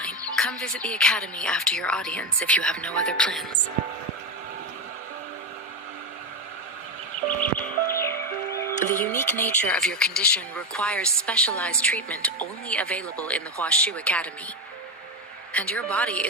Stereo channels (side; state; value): both; normal; correlation 0.13